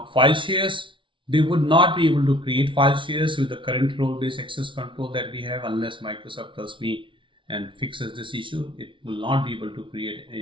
file shares, they would not be able to create file shares with the current role-based access control that we have unless Microsoft tells me and fixes this issue. It will not be able to create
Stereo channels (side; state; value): left; late; 0.25 ms